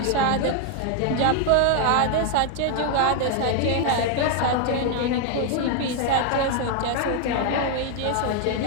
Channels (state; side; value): different; both; correlation 0.01